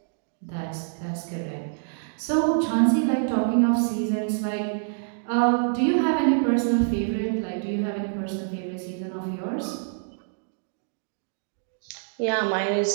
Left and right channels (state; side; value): silent; left; digital silence